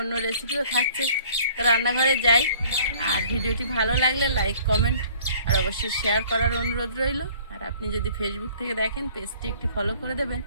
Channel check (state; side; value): inverted; both; correlation -0.53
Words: অন্য রেসিপিও থাকছে। তো রান্নাঘরে যাই, আর ভিডিওটি ভালো লাগলে লাইক, কমেন্ট আর অবশ্যই শেয়ার করার অনুরোধ রইল। আর আপনি যদি ফেসবুক থেকে দেখেন, পেজটি একটি ফলো করে দেবেন।